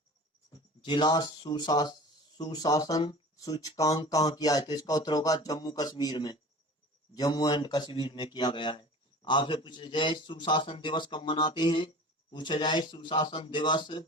जिला सुशासन सूचकांक कहाँ किया है? तो इसका उत्तर होगा जम्मू एंड कश्मीर में किया गया है। आपसे पूछा जाए सुशासन दिवस कब मनाते हैं? पूछा जाए सुशासन दिवस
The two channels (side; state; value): both; normal; correlation 0.39